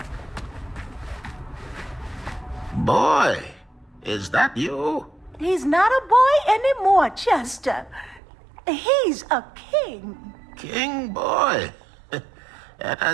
Boy, is that you? He's not a boy anymore, Chester. He's a king. King boy. That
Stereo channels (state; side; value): drops out; left; at 8.2 s